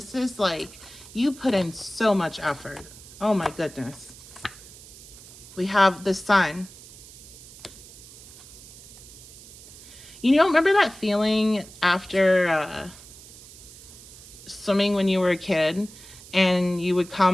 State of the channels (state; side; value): noise; right; hiss, 19 dB below the sound